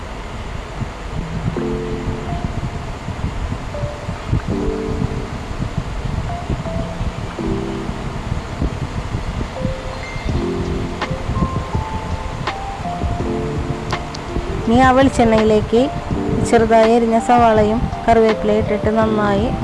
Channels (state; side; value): identical; both; correlation 1.00